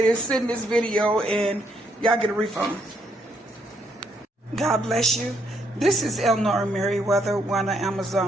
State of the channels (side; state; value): both; normal; correlation 0.73